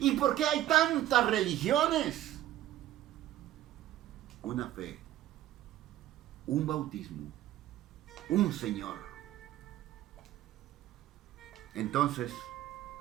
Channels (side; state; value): left; quieter; 13.6 dB